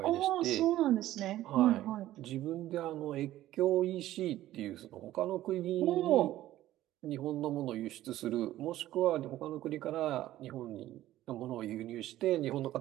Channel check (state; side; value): quieter; left; 14.4 dB